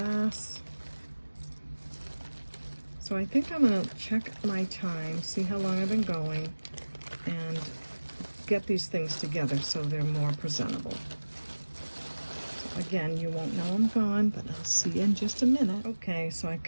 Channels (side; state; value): both; inverted; correlation -1.00